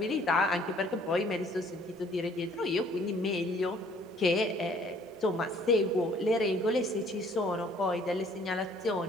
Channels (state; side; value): normal; both; correlation 0.59